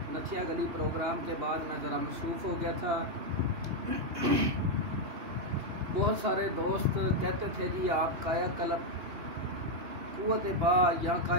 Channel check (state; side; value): late; left; 2.9 ms